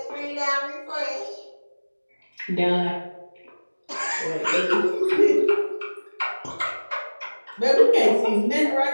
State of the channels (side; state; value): both; inverted; correlation -1.00